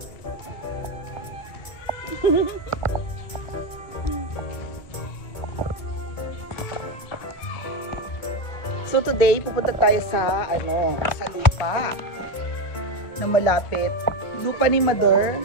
So today, pupunta tayo sa sa lupa na malapit. Lupa ni Mother.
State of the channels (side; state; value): right; late; 2.2 ms